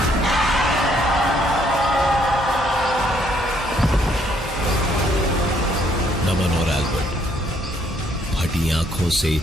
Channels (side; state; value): both; normal; correlation 0.68